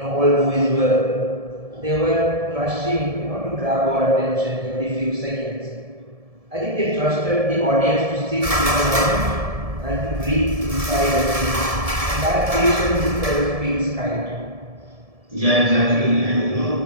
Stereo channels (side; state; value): left; late; 1.7 ms